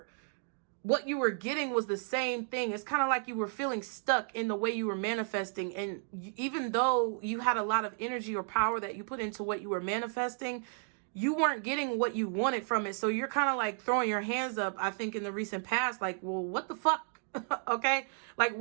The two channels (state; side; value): silent; left; 56 dB below the other